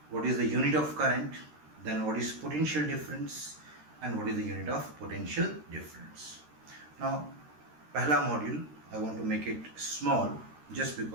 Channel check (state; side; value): late; left; 13 ms